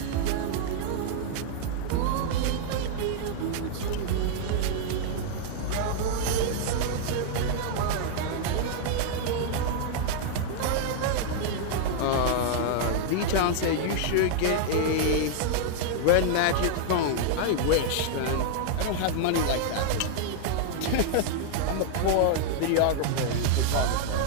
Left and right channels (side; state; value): both; different; correlation -0.01